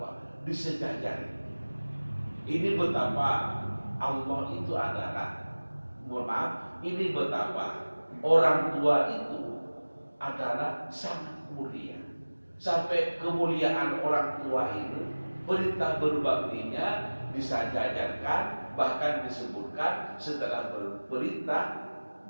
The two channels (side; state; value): both; inverted; correlation -1.00